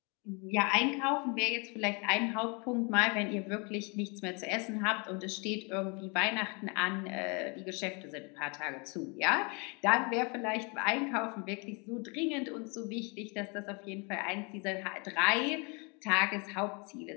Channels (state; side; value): quieter; right; 32.0 dB